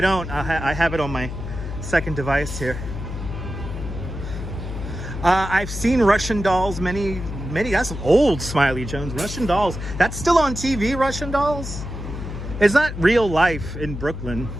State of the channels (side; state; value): left; noise; hum, 7 dB below the sound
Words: don't, I have it on my second device here. I've seen Russian Dolls, many, that's old, Smiley Jones. Russian Dolls, that's still on TV, Russian Dolls? It's not real life in Brooklyn,